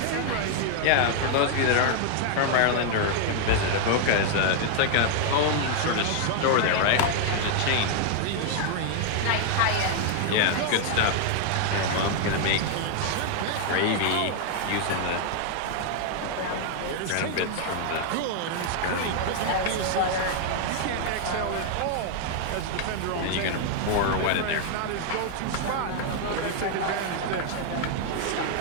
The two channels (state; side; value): different; both; correlation 0.00